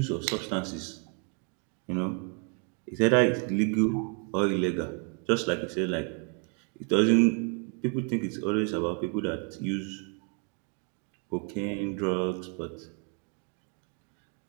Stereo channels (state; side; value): quieter; left; 39.7 dB